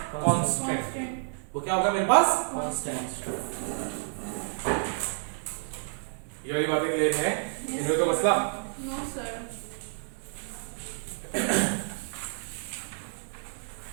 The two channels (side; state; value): left; silent; digital silence